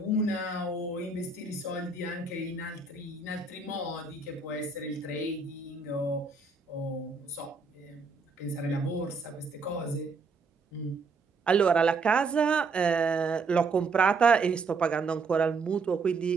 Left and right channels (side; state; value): left; quieter; 4.2 dB